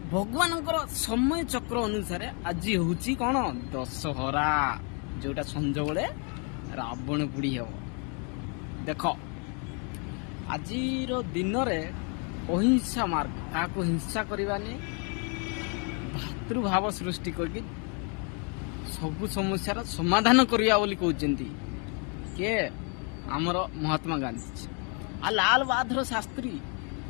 भगवान समय चक्र अनुसार आज हूँ कौन दशहरा, जोटा संज बेले रावण पोड़ी हे। देख आज दिन में अहिंसा मार्ग क्या हिंसा करवानी भातृभाव सृष्टि करके सबु समस्यार समाधान करवा बोली कहते के आमर महात्मा गांधी आ लाल बहादुर शास्त्री।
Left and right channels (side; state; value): right; quieter; 37.2 dB